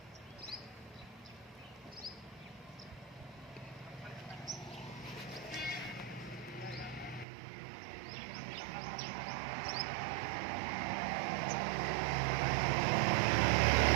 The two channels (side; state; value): left; drops out; at 7.2 s